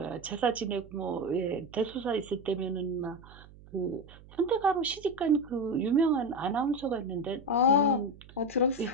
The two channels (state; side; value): noise; right; hum, 21 dB below the sound